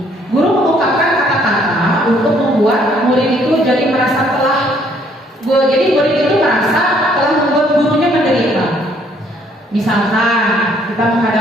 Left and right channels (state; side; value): normal; both; correlation 0.64